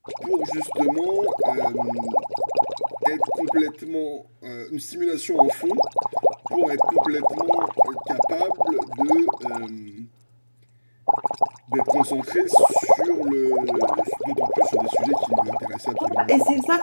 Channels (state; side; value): inverted; both; correlation -1.00